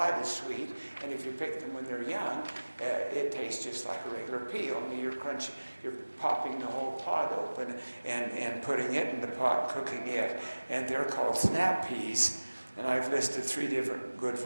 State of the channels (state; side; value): inverted; both; correlation -1.00